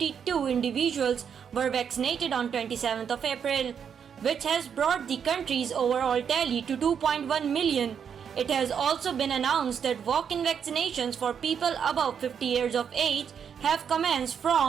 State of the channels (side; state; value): left; quieter; 7.5 dB